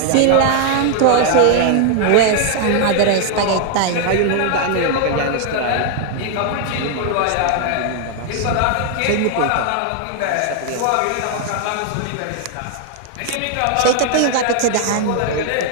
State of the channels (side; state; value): both; different; correlation 0.00